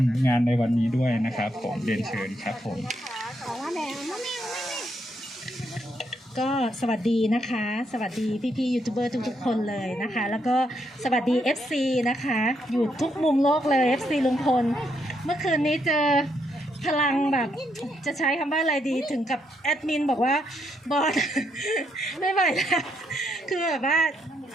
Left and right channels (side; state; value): both; normal; correlation 0.77